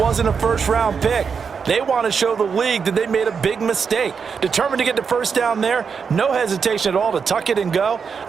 a 1st-round pick. They want to show the league that they made a big mistake. Determined to get the 1st down there, no hesitation at all to tuck it and go.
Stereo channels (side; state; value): left; quieter; 6.0 dB